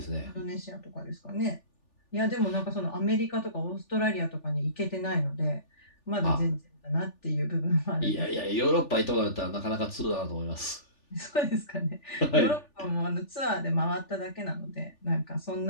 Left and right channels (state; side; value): late; right; 3.4 ms